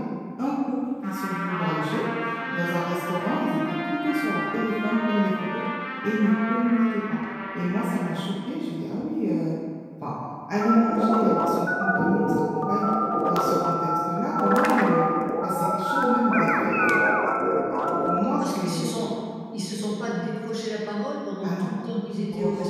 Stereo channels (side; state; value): both; identical; correlation 1.00